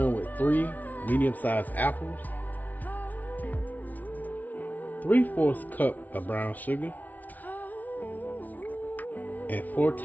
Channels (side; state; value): right; late; 0.077 ms